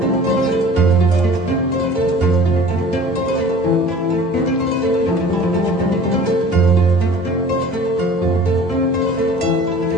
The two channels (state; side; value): normal; both; correlation 0.45